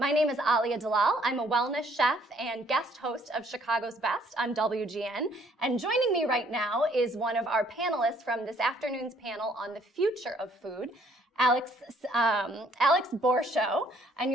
name is Alia Dalal. I'm a wellness chef and guest host of Chicago's Best on WGN. And joining me right now is one of our panelists from this afternoon's panel on the future of food, Alex Borschow, and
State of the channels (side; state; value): both; normal; correlation 0.64